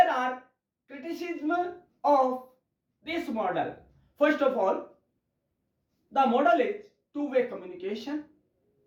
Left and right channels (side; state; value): both; identical; correlation 1.00